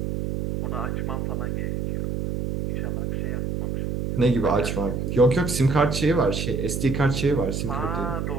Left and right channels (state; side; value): noise; right; hum, 2 dB below the sound